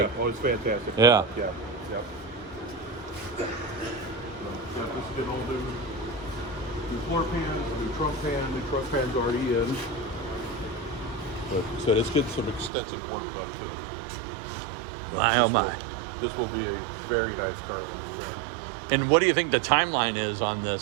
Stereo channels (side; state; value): left; drops out; at 12.7 s